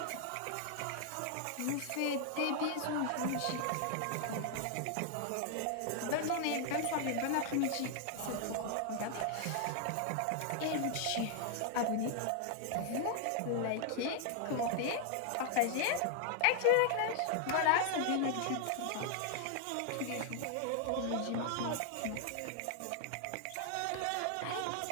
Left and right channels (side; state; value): both; different; correlation 0.00